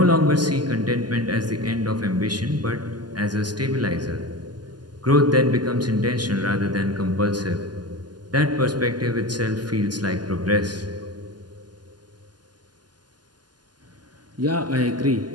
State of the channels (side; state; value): left; late; 0.70 ms